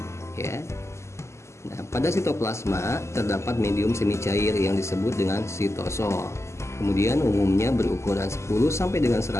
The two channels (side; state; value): right; late; 0.13 ms